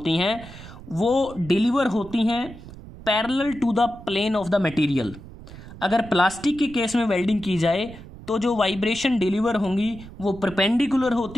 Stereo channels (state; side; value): noise; right; rumble, 16 dB below the sound